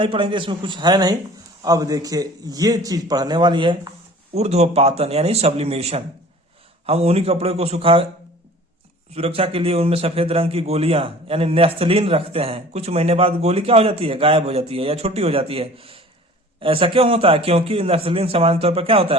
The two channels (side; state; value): both; normal; correlation 0.46